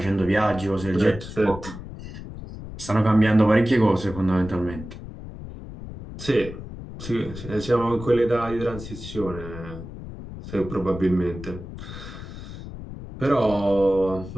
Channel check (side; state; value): left; noise; rumble, 12 dB below the sound